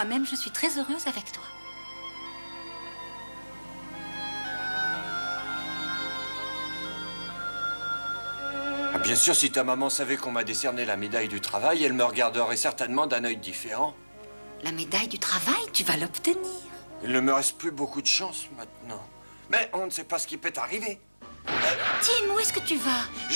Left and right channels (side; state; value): both; inverted; correlation -1.00